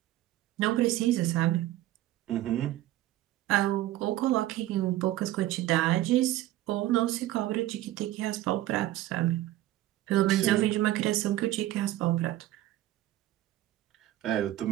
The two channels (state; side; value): quieter; left; 14.8 dB